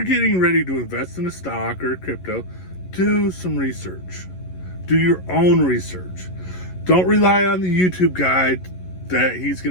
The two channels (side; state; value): right; late; 11 ms